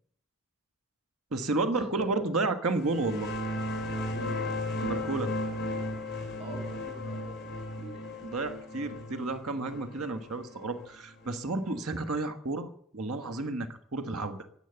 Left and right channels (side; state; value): both; normal; correlation 0.33